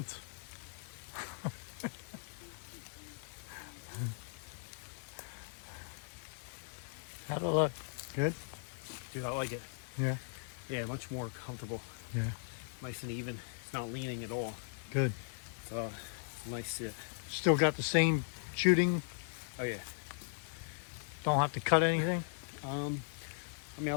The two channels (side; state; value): right; silent; 52 dB below the other